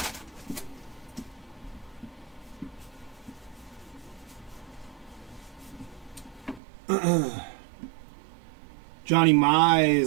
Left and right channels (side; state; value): left; drops out; at 6.6 s